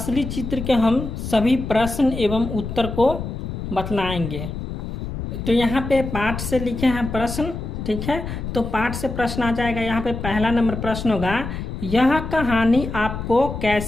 चित्र के हम सभी प्रश्न एवं उत्तर को बतलाएंगे। तो यहाँ पे पाठ से लिखे हैं प्रश्न। ठीक है, तो पाठ से प्रश्न आ जाएगा। यहाँ पे पहला नंबर प्रश्न होगा, यह कहानी आपको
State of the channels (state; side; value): noise; left; rumble, 6 dB below the sound